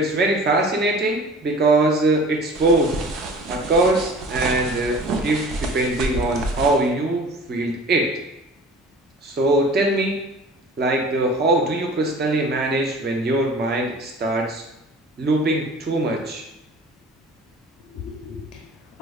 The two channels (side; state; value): both; normal; correlation 0.43